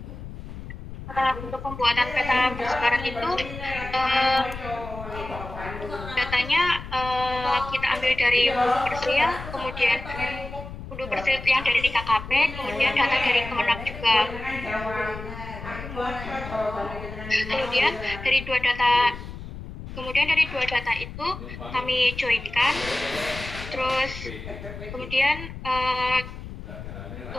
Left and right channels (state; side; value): noise; left; rumble, 11 dB below the sound